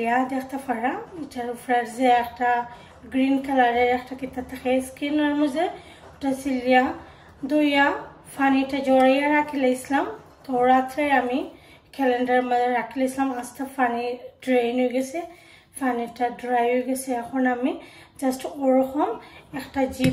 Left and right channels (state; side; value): identical; both; correlation 1.00